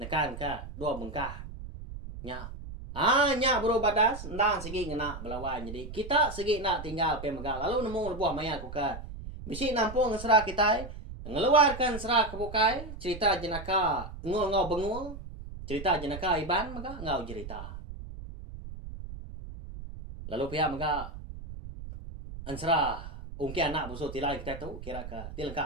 ka dua bengkah. Nya. Nya bro badas, ndang segi ngena belawan. Jadi kita segi nak tinggal pemegang. Lalu nemu lebuah maya kuka. Bisi nampung serah kita, ngeluarkan serah kebukai, cerita jenaka ngul-ngau bengul, cerita jenaka iban maka ngau cerita. Lalu pihak maka ansra ungki anak busuk tilai kita tu kira ke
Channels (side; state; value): right; noise; rumble, 11 dB below the sound